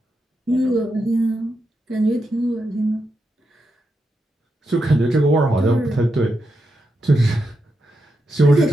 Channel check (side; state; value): both; normal; correlation 0.85